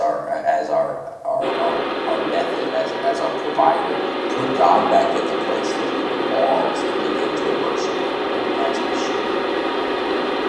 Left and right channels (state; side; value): identical; both; correlation 1.00